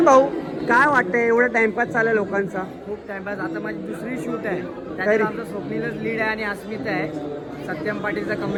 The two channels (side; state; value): both; identical; correlation 1.00